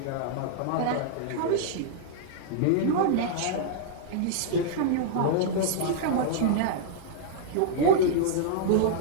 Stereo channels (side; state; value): both; different; correlation -0.02